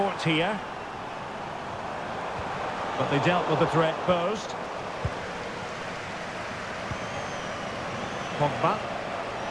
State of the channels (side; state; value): both; identical; correlation 1.00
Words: here. But they dealt with the threat posed. Pogba.